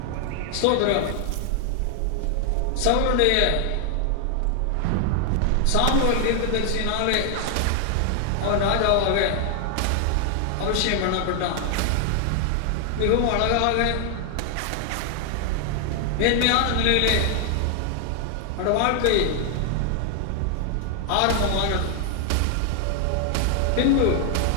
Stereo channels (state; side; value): different; both; correlation 0.00